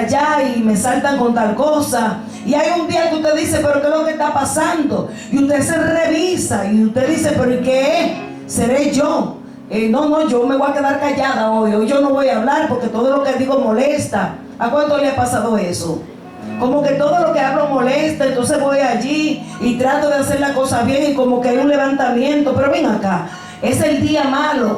y me saltan con tal cosa. Y hay un día que usted dice: pero ¿qué es lo que está pasando? Y usted se revisa y usted dice: pero ¿y qué es? ¿Seré yo? No, yo me voy a quedar callada hoy yo no voy a hablar, porque todo lo que digo molesta. ¿A cuánto le ha pasado eso? Como que todo lo que hablo molesta, entonces voy allí y trato de hacer la cosa bien, y como que hay un levantamiento. Pero ven acá, es el día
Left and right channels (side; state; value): both; identical; correlation 1.00